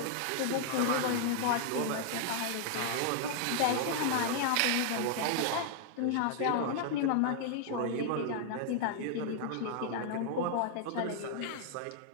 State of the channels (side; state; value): both; different; correlation 0.00